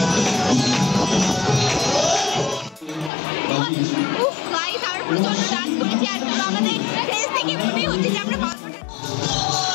উফ গাইস, আমরা প্রচন্ড ডান্স করেছি আর আমাদের ফেস থেকে মনে হচ্ছে যে আমরা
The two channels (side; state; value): right; drops out; at 3.1 s